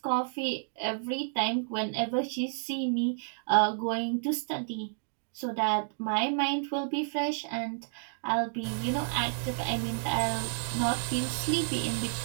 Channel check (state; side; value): silent; left; digital silence